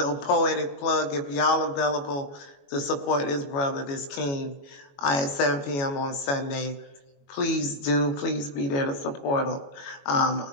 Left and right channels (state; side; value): late; right; 22 ms